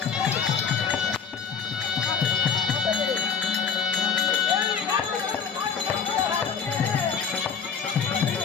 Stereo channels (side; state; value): right; quieter; 6.3 dB